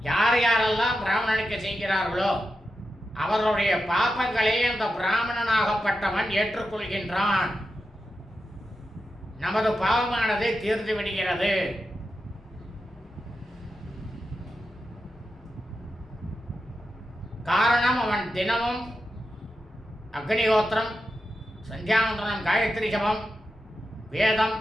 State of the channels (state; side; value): normal; both; correlation 0.89